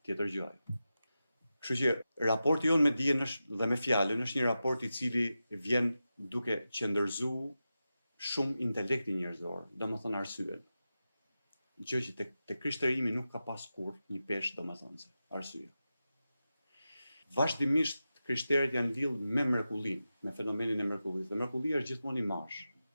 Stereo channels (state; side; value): inverted; both; correlation -0.92